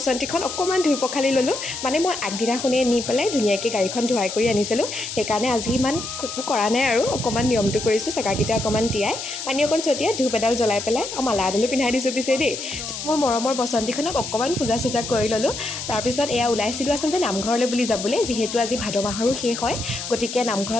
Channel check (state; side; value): noise; left; hiss, 7 dB below the sound